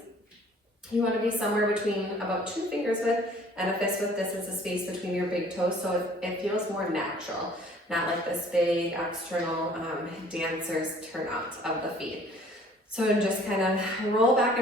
You want to be somewhere between about 2 fingers width and a fist width distance of space between your big toes, so it feels more natural, not like this big external dancer's turnout of the feet. So just kind of roll back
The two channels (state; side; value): normal; both; correlation 0.54